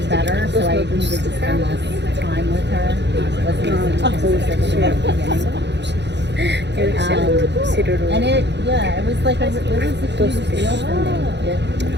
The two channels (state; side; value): late; left; 0.50 ms